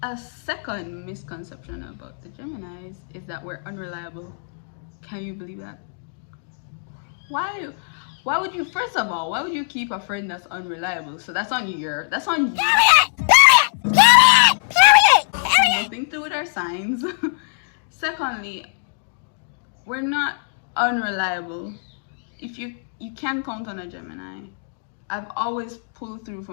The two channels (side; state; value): right; silent; digital silence